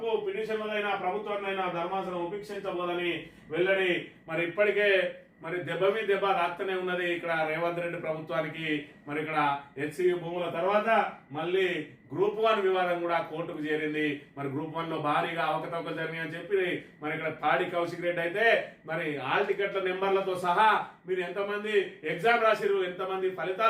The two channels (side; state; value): both; identical; correlation 1.00